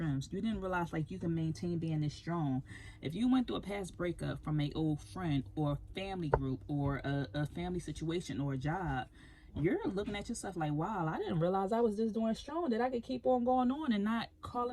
You didn't realize like you can maintain being this strong. If you went through a past breakup from an old friend or family group or a family situation or a job, you're looking at yourself like, wow, I didn't realize I was just doing strong, that I could keep on going on and not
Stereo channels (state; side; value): identical; both; correlation 1.00